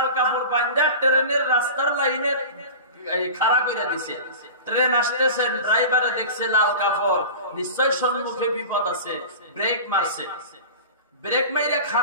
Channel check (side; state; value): both; inverted; correlation -0.34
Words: কাপড় বাঁধা ট্রেনের রাস্তার লাইনে খাড়া করে দিছে। ট্রেন আসতেছে, ড্রাইভারে দেখছে লাল কাপড়, নিশ্চয় সম্মুখে বিপদ আছে, ব্রেক মারছে। ব্রেক মাইরে